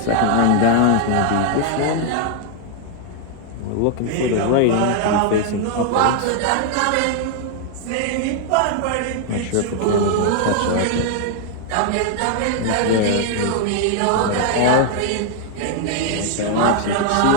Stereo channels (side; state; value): both; different; correlation 0.00